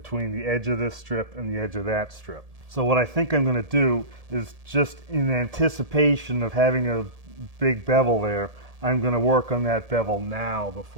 the edge of this strip and the edge of that strip. So what I think I'm going to do is, just in anticipation of having a big bevel there, I'm going to work on that bevel now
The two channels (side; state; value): left; late; 1.7 ms